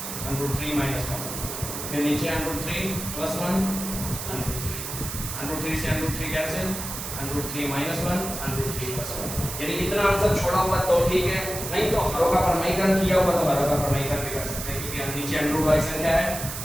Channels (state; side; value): noise; right; hiss, 7 dB below the sound